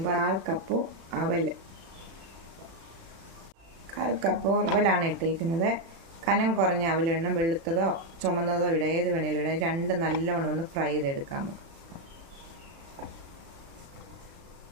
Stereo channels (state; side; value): late; left; 36 ms